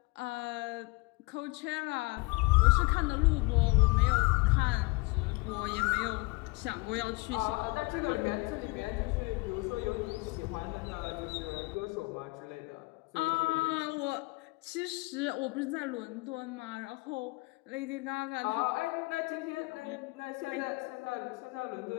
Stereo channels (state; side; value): quieter; right; 26.1 dB